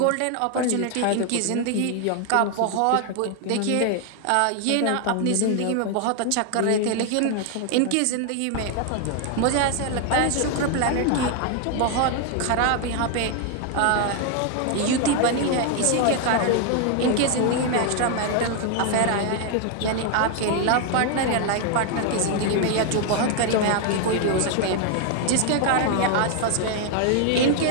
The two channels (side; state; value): both; different; correlation 0.00